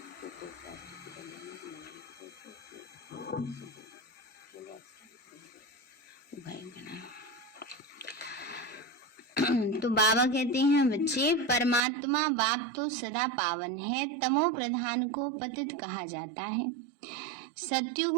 तो बाबा कहते हैं बच्चे, परमात्मा बाप तो सदा पावन है, तमो प्रधान को पतित कहा जाता है। सतयुग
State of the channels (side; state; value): left; drops out; at 11.8 s